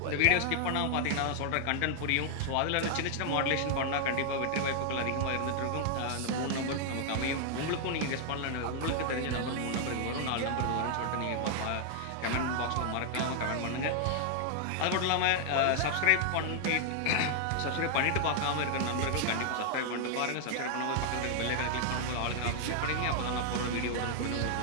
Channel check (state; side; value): different; both; correlation 0.00